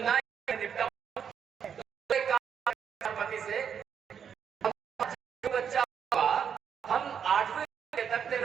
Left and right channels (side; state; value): left; quieter; 7.7 dB